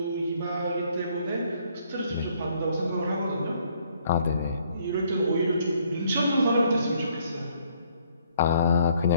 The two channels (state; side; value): inverted; both; correlation -0.66